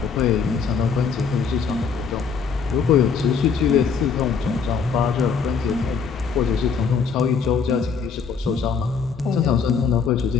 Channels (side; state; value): right; quieter; 5.9 dB